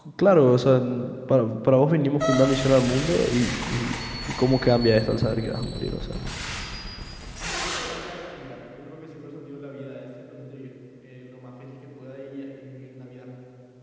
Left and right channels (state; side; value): identical; both; correlation 1.00